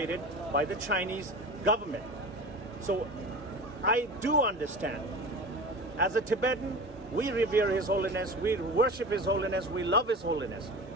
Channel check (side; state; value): both; normal; correlation 0.33